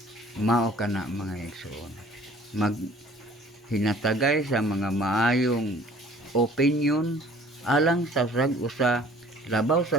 Mao kana mga igsoon, maghinatagay sa mga maayong opinion alang sa rag-usa labaw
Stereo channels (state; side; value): normal; both; correlation 0.52